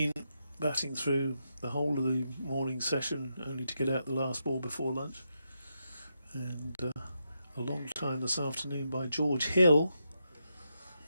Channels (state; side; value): inverted; both; correlation -0.84